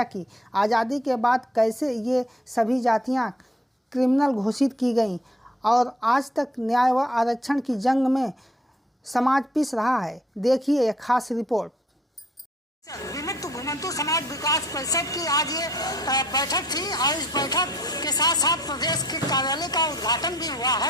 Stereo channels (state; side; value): normal; both; correlation 0.60